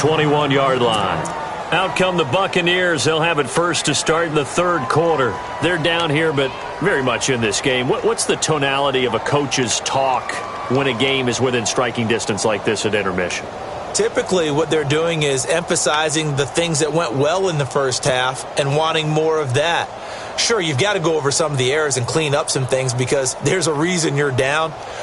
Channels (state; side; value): identical; both; correlation 1.00